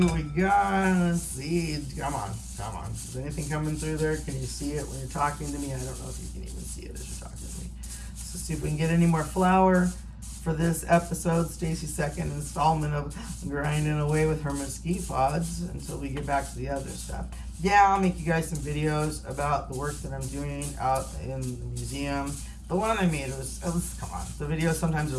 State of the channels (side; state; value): both; identical; correlation 1.00